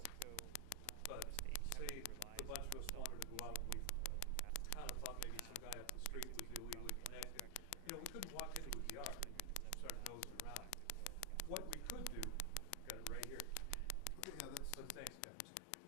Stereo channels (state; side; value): different; both; correlation 0.00